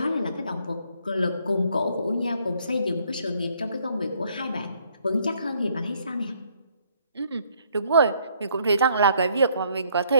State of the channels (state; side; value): inverted; both; correlation -0.67